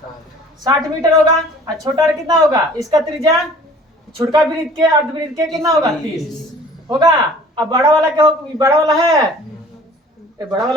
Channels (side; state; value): both; normal; correlation 0.49